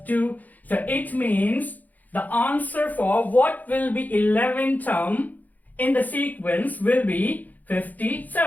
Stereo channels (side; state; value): right; late; 0.081 ms